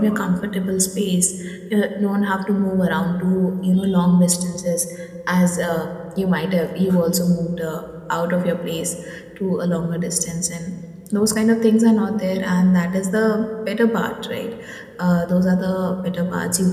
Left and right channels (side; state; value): both; identical; correlation 1.00